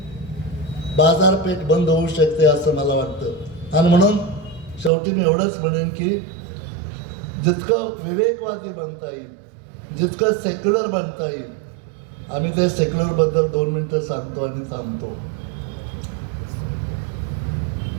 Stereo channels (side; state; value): left; drops out; at 4.9 s